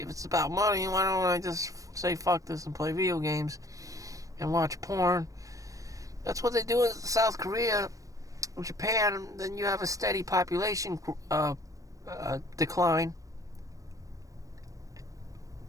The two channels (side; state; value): left; late; 0.16 ms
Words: it's about money, why don't I just say fuck this and play video games and watch porn? That's what they do in South Korea, Japan. Then you have a steady population decline.